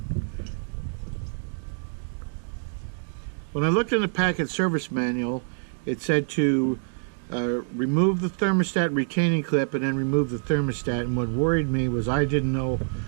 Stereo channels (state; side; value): silent; left; 61 dB below the other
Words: When I looked in the Packard service manual, it said to remove the thermostat retaining clip and then remove the thermostat. And what worried me was I didn't know